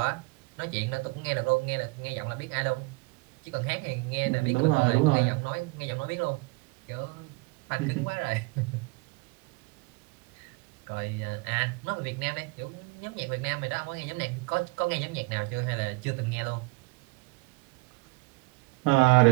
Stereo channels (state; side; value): quieter; left; 26.7 dB